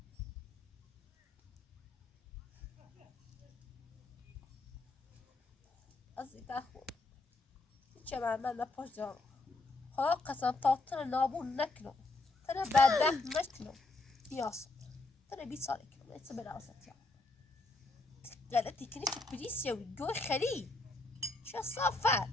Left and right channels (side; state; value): right; quieter; 3.2 dB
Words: از این خود چه من نپاش دارم خدا قسم تا تر نابون نکنم تر بدبخت نکنم بیاست تر 20 ساله کنم ایسا بره وسط یا غلطی کنی که پلیس یاوی گوی خری چه صافت